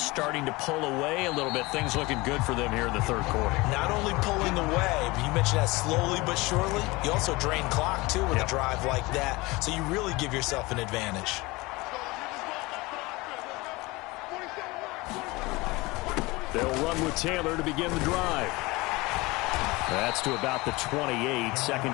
to pull away a little bit. Things looking good for them here in the 3rd quarter. Not only pulling away, but you mentioned that slowly but surely. You also drain clock, too, with a drive like that. So you really give yourself an advantage. They'll run with Taylor to begin the drive. That's to about the 28.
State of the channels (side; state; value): right; quieter; 22.7 dB